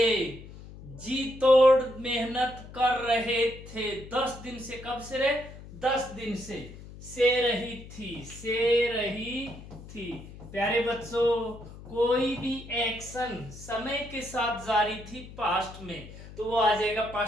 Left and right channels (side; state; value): left; noise; hum, 16 dB below the sound